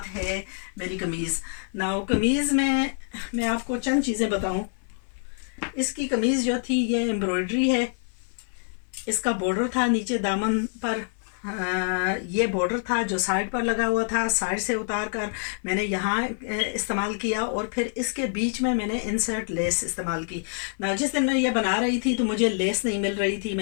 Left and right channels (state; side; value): silent; right; 59 dB below the other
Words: है मेरी कमीज़. नाउ कमीज़ में मैं आपको चंद चीज़ें बताऊं. इसकी कमीज़ जो थी ये एम्ब्रॉयडरी है. इसका बॉर्डर था नीचे दामन पर, ये बॉर्डर था जो साइड पर लगा हुआ था. साइड से उतार कर मैंने यहाँ इस्तेमाल किया और फिर इसके बीच में मैंने इंसर्ट लेस इस्तेमाल की. ना जिस दिन मैं ये बना रही थी तो मुझे लेस नहीं मिल रही थी.